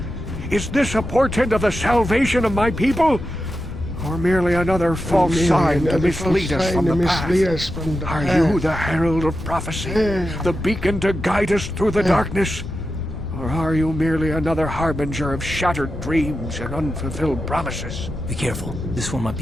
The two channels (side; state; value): left; noise; rumble, 10 dB below the sound